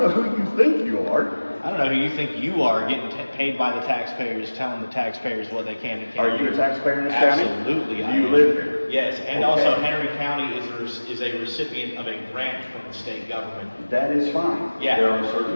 who you think you are. I don't know who you think you are, getting paid by the taxpayers, telling the taxpayers what they can and can't Are you do. a taxpayer in this county? Absolutely, Do I you am. live here? Yes, and Okay. also Henry County is a recipient of a grant from the state government. That is fine. Yeah. There are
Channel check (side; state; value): both; inverted; correlation -1.00